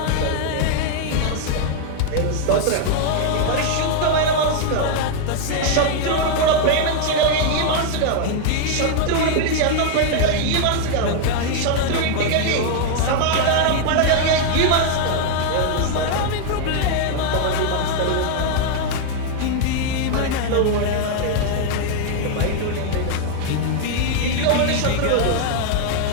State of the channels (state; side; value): different; both; correlation 0.00